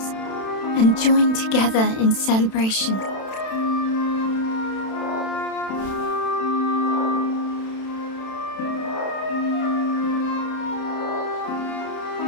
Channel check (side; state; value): right; late; 31 ms